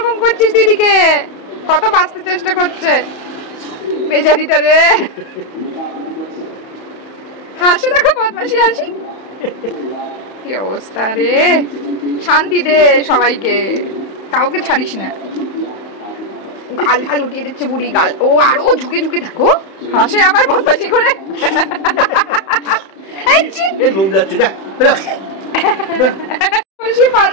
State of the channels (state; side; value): late; right; 31 ms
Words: করছিস দিদিকে, কত বাঁচতে চেষ্টা করছে বেচারিটা রে। হাসে দেখো, বদমাসি হাসি। কি অবস্থা রে, শান্তি দে সবাইকে, কাউকে ছাড়িস না। গাল গাল উঠিয়ে দিচ্ছে বুড়ি, গাল। ও আরো ঝুঁকে ঝুঁকে দেখো, হাসে আবার বদমাসি করে। লোম যাচ্ছে, যা